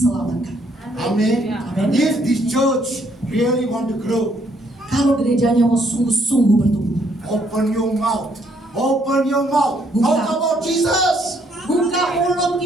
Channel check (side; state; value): both; normal; correlation 0.69